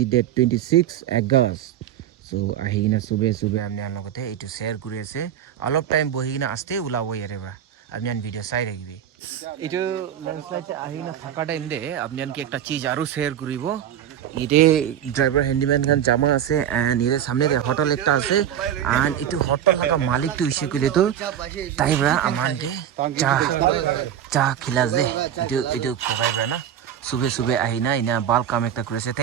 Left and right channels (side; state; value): left; quieter; 10.2 dB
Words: ডেট 26 আগষ্ট সো আহি কিনা সুবে আপনাৰ লগতে এইটো শ্বেয়াৰ কৰি আছে অলপ টাইম বহি কিনা আস্তে ওলাব ইয়াৰে পৰা আপনার ভিডিঅ' চাই থাকিবি এইটো লেন্ডশ্লাইড আহি না থাকা টাইম দে আপনার একটা চিজ আৰু শ্বেয়াৰ কৰিব ইতে ড্রাইভার হ্যান্ডিম্যান খান জামা আছে এন্ড এর সামনে হোটেল একটা আছে এন্ড এইটো হোটেল লাগা মালিক তো ইসে কইলে তো তাইবরা আমানকে চা খিলাস দে এইটো কোকাইবরা না সুবে আহি না ইনা বাল কাম একটা করেছে